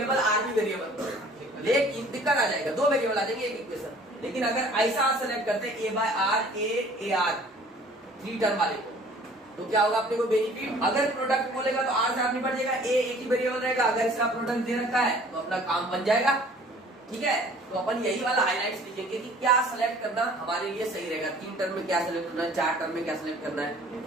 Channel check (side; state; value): both; normal; correlation 0.52